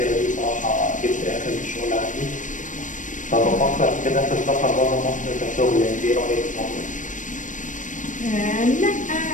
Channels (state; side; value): late; right; 0.37 ms